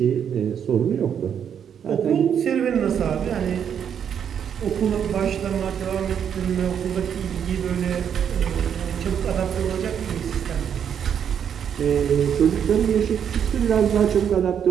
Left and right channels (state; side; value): quieter; left; 8.3 dB